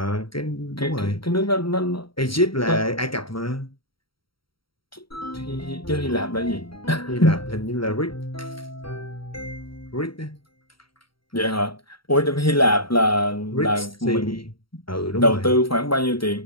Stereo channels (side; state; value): right; late; 0.74 ms